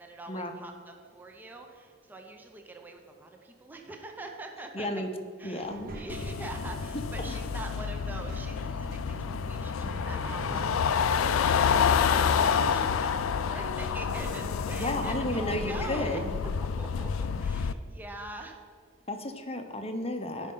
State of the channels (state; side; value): quieter; right; 5.0 dB